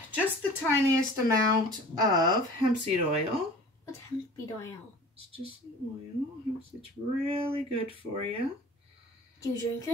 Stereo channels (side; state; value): both; normal; correlation 0.43